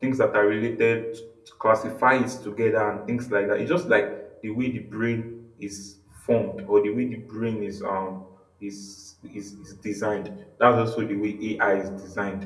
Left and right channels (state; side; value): identical; both; correlation 1.00